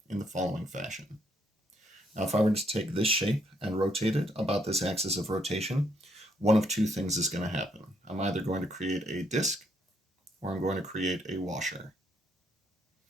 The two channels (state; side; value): normal; both; correlation 0.72